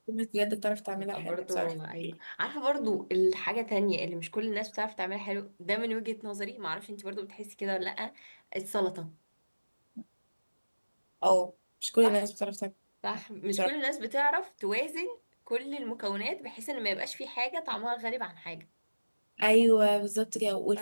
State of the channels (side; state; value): both; inverted; correlation -1.00